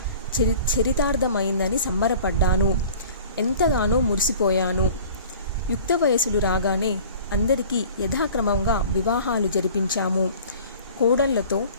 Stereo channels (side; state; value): both; inverted; correlation -0.45